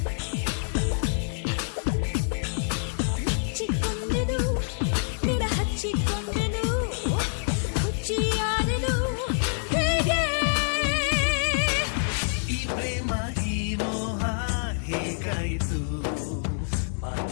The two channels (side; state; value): right; silent; digital silence